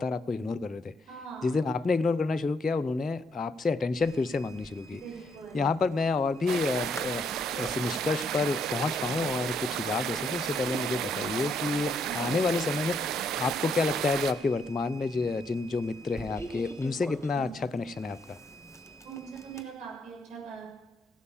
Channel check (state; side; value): normal; both; correlation 0.73